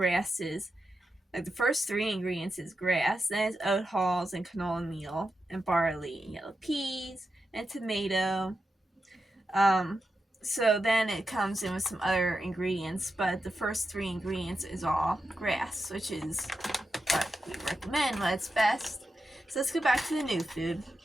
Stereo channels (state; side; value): normal; both; correlation 0.89